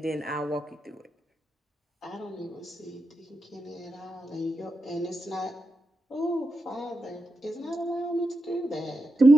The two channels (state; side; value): normal; both; correlation 0.87